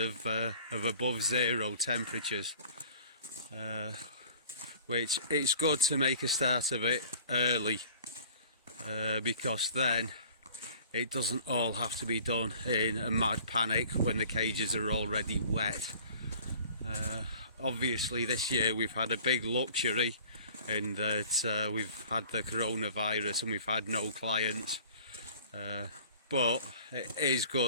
above zero temperatures, which it's good to make a start of it early, because then it doesn't all have to be done in a mad panic when the cages are already wet. Obviously this year we've had a big luxury in that we've had the coronavirus and we've had no clients, but it is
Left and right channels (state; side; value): inverted; both; correlation -0.48